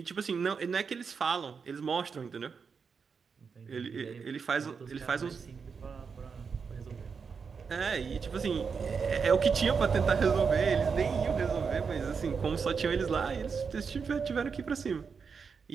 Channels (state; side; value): quieter; left; 5.7 dB